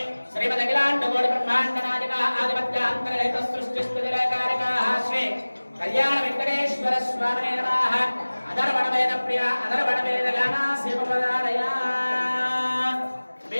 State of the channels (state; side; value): inverted; both; correlation -1.00